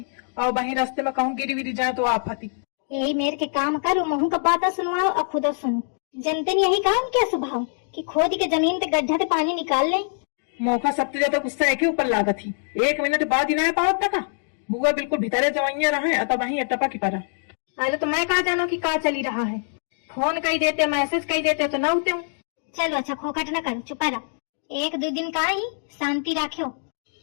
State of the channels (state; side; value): silent; right; digital silence